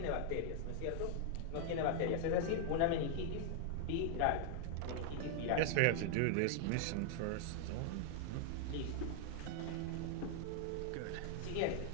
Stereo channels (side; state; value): both; different; correlation 0.00